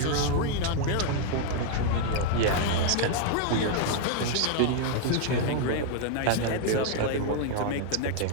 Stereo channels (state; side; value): different; both; correlation 0.00